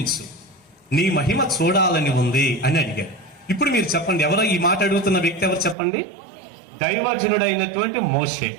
నీ మహిమ చూడాలని ఉంది అని అడిగాడు. ఇప్పుడు మీరు చెప్పండి, ఎవరో ఈ మాట అడుగుతున్న వ్యక్తి ఎవరు చెప్పండి? దైవజనుడైనటువంటి మోషే.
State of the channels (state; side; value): drops out; left; at 5.8 s